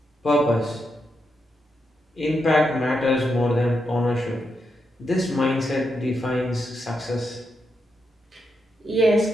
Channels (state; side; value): normal; both; correlation 0.84